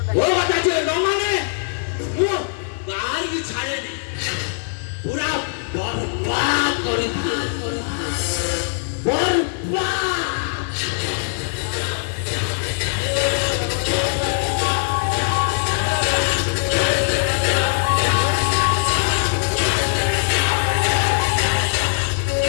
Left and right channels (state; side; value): silent; right; digital silence